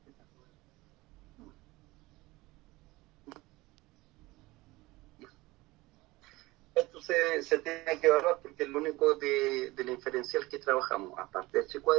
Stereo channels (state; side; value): quieter; left; 20.6 dB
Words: esto se tiene que evaluar porque es lo único de la inferencial que trabajamos, aparte del h